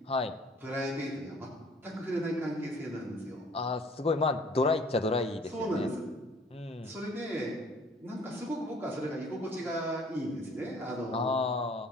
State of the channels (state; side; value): normal; both; correlation 0.54